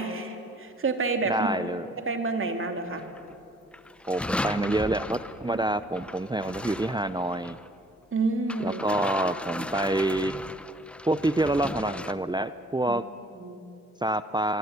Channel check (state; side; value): normal; both; correlation 0.56